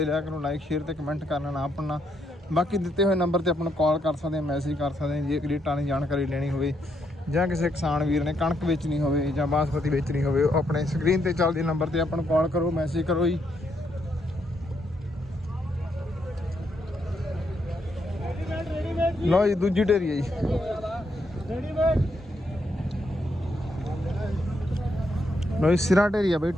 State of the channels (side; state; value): both; normal; correlation 0.77